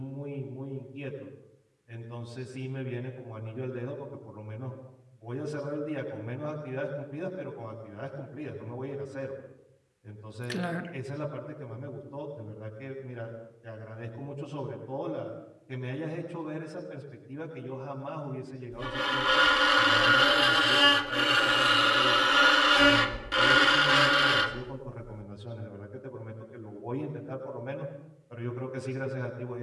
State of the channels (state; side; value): identical; both; correlation 1.00